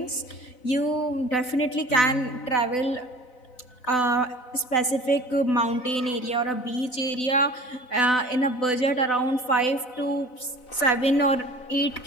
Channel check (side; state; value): right; late; 4.0 ms